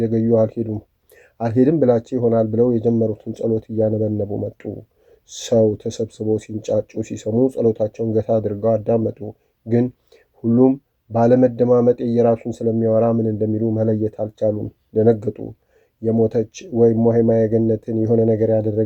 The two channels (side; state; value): both; identical; correlation 1.00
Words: አልሄድም ብላቸው ይሆናል ብለው የጀመሩትን ጸሎት እያነበነቡ መጡ። ሰው ተሰብስበው ሲንጫጩ ሲሰሙ ጸሎታቸውን ገታ አድርገው አዳመጡ። ግን ሁሉም ባለመደማመጥ የራሱን ስለሚያወራ ምን እንደሚሉ መለየት አልቻሉም። ደነገጡ። የሞተች ወይም እማሆይ ማየገነትን የሆነ ነገር